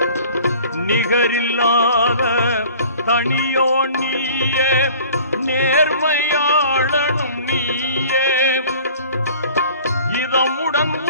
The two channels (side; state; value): both; inverted; correlation -0.47